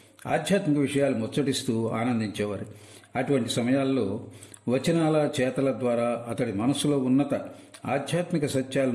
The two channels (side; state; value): both; identical; correlation 1.00